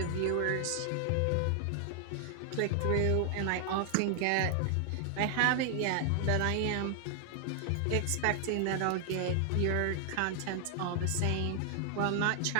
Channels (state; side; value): different; both; correlation 0.00